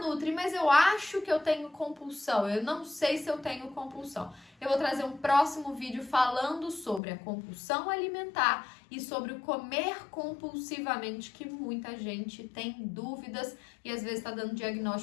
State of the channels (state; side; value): drops out; right; at 7.0 s